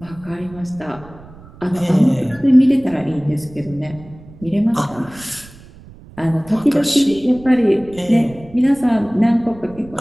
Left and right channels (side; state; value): right; noise; rumble, 20 dB below the sound